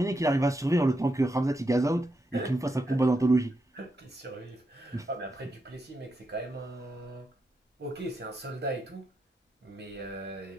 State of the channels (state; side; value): normal; both; correlation 0.84